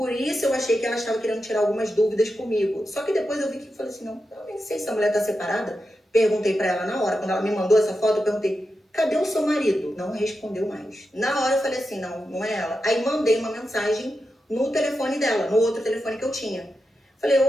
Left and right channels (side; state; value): both; normal; correlation 0.89